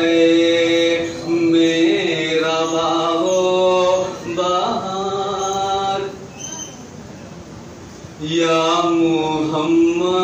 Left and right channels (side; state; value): both; identical; correlation 1.00